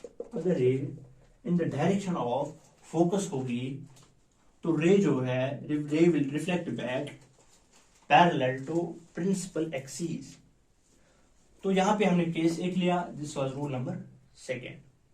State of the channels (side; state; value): both; identical; correlation 1.00